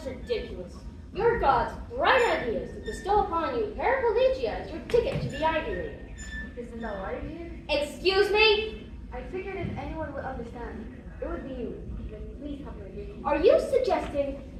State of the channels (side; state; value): both; identical; correlation 1.00